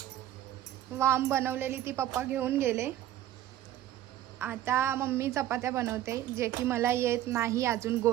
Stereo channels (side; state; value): left; quieter; 13.0 dB